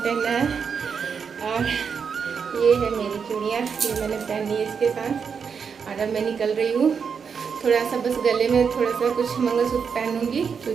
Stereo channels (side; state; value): left; quieter; 6.3 dB